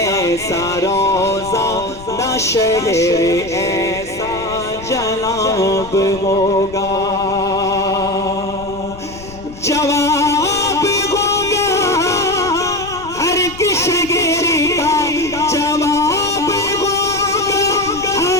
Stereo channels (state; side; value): noise; left; rumble, 16 dB below the sound